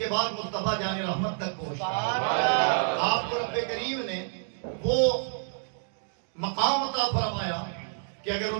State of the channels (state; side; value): silent; left; digital silence